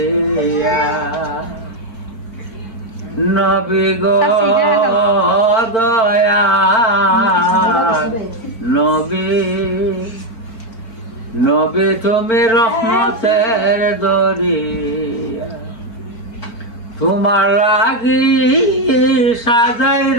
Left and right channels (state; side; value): late; right; 4.4 ms